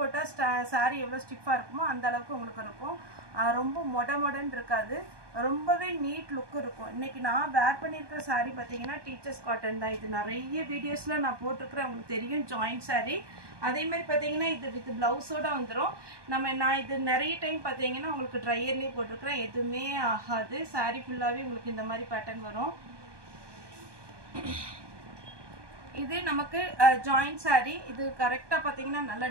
சாரி எவ்வளோ ஸ்டிஃபாக இருக்குமோ அந்த அளவுக்கு உங்களுக்கு இருக்கும். ரொம்ப மொடன்னு இருக்காது, ரொம்பவே நீட் லுக் இருக்கும். இன்னைக்கு நான் வேர் பண்ணியிருக்கிற சாரி பார்த்தீங்கன்னா டீச்சர்ஸ் காட்டன் தான். இது நிறைய வீடியோஸில் நான் போட்டிருக்கிறேன், உங்களுக்கு தெரியும், ஜாயிண்ட் சாரி. அதே மாதிரி பார்த்தீங்கன்னா இது வித் ப்ளவுஸோட வந்துடும். நான் இது நிறைய டைம் பார்த்தீங்கன்னா உங்களுக்கு ட்ரையர்லேயே போட்டிருக்கிறேன், எதுவுமே ஆகாது. சாரி ஃபுல்லாகவே உங்களுக்கு இந்த மாதிரி பேட்டர்ன் வரும். இது நமக்கு ஜாயிண்ட் சாரி. இது கரெக்டா பாத்தீங்கன்னா நல்ல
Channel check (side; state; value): left; late; 1.2 ms